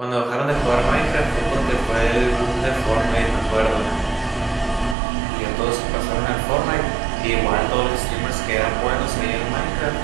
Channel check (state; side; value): drops out; left; at 5.0 s